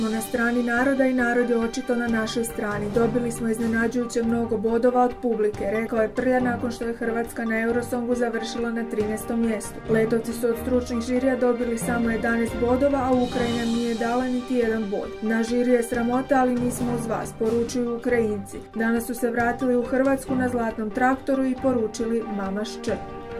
na strani naroda i narod je očito na našoj strani. Dobili smo iznenađujuće mnogo bodova od publike, rekao je Prlja nakon što je Hrvatska na Eurosongu završila na 13. mjestu. Letovci su od stručnih žirija dobili samo 11 bodova, a Ukrajina nije dala niti jedan bod. Na žiri je sramota, ali mi smo uz vas, poručuju Ukrajinci. Danas su se vratili u Hrvatsku na zlatnom traktoru i poručili Mamaš Č.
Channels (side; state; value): both; identical; correlation 1.00